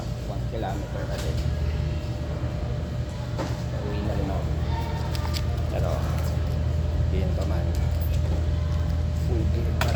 kilometer ulit. Uwi na rin ako. Pero, yun pa man. Full gear pa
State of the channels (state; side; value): identical; both; correlation 1.00